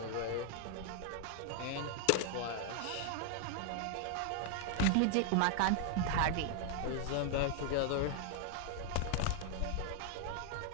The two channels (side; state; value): both; different; correlation 0.00